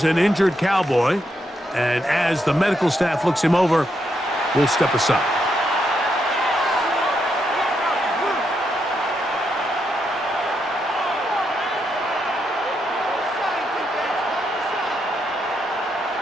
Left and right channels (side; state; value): both; normal; correlation 0.80